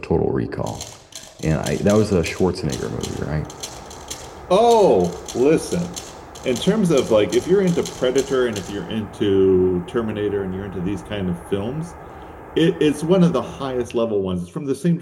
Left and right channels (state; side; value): identical; both; correlation 1.00